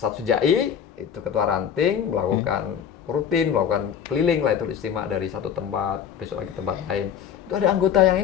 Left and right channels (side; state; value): right; quieter; 8.4 dB